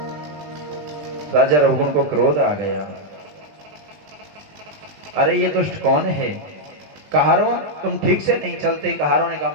राजा रघुगुण को क्रोध आ गया, अरे ये दुष्ट कौन है? कहारों तुम ठीक से नहीं चलते। कहारों ने कहा,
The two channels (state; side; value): late; left; 20 ms